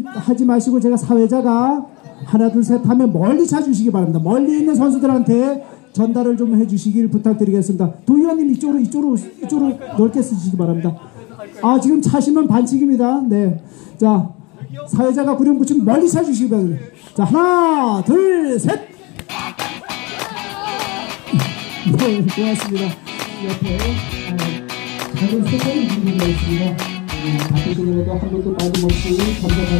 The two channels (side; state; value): right; quieter; 26.0 dB